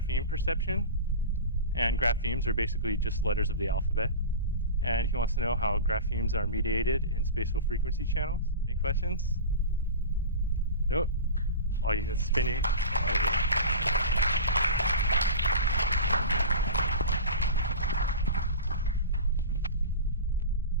perception. And graphemes are basically just letters of the alphabet. And he wants to know how graphemes are mediated in spatial frequency channels. Any questions? Nope. Oh, you spinning.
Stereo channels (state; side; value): inverted; both; correlation -0.31